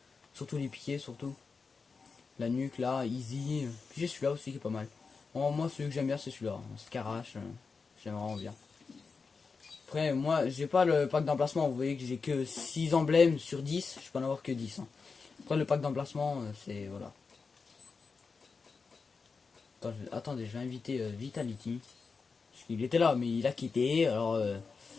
Surtout les piquets, surtout. La nuque, là, easy. Puis j'ai celui-là aussi qui est pas mal. Bon, moi, celui que j'aime bien, c'est celui-là. Scarache, j'aime vraiment bien. Après, moi, j'ai pas le pack d'emplacement. Vous voyez que j'ai que 6 emblèmes sur 10. Je peux en avoir que 10. Hein. Après, le pack d'emplacement, c'est... Voilà. Attendez, je vais inviter Vitality. Parce qu'il était là, mais il a quitté. Alors,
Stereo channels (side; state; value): right; quieter; 4.8 dB